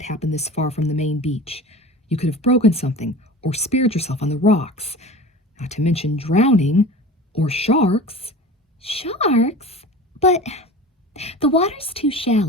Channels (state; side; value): normal; both; correlation 0.35